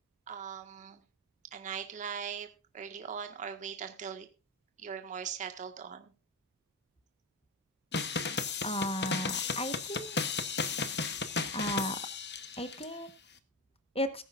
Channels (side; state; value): both; normal; correlation 0.17